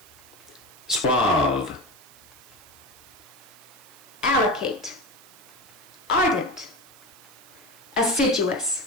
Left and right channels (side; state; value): right; noise; hiss, 23 dB below the sound